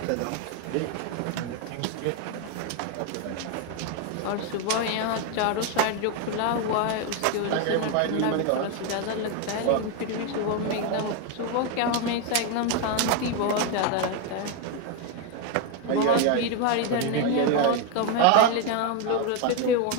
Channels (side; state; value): both; different; correlation 0.01